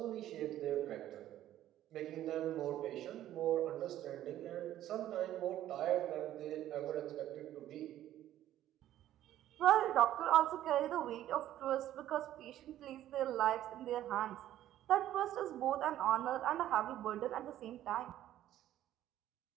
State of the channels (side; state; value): left; quieter; 12.7 dB